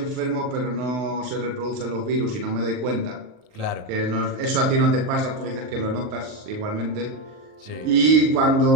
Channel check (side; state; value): left; late; 38 ms